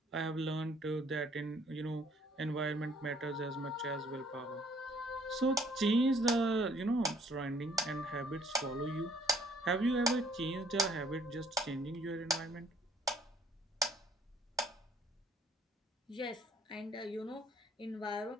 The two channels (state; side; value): normal; both; correlation 0.63